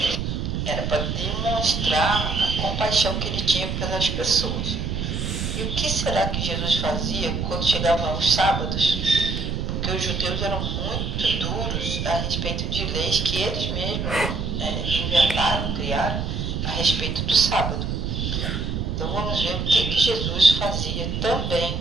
era para demonstrar a compaixão que ele tinha pelas pessoas. E o que será que Jesus fazia quando chegavam aos sábados? Porque os judeus eram muito duros a respeito de leis que eles mesmos inventaram, criaram a respeito do sábado. Então vamos ver o que Jesus fazia também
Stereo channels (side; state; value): right; noise; rumble, 2 dB below the sound